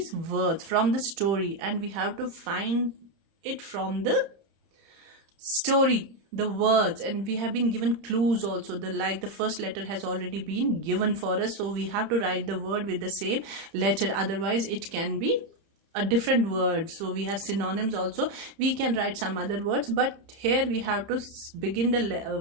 words from the story, and we have to find it from the story, the words, and we have been given clues also. The first letter has already been given for us, so we have to write the word with the same letter, otherwise it can be a different word. So we have synonyms also. We can write some other words, but here we have to begin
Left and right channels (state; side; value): late; left; 30 ms